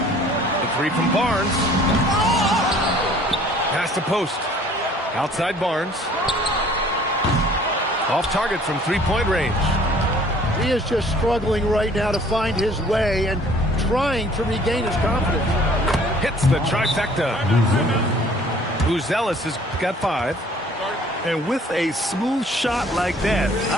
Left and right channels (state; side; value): normal; both; correlation 0.54